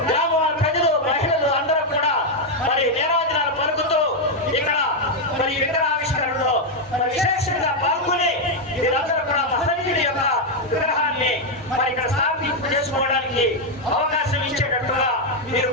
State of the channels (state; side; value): normal; both; correlation 0.01